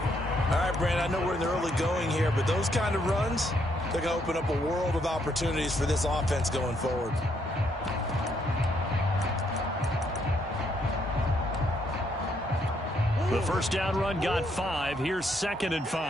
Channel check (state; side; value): normal; both; correlation 0.73